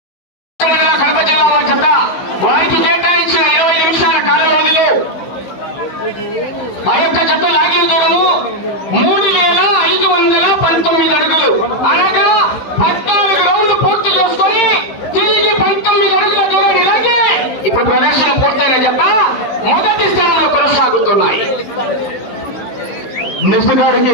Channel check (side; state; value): right; late; 15 ms